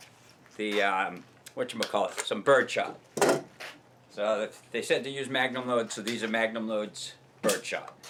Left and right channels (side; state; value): both; identical; correlation 1.00